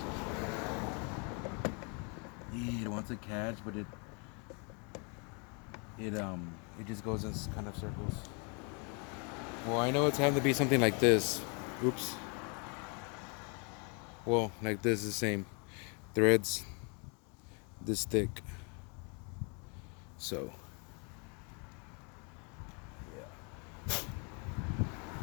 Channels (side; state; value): right; quieter; 34.8 dB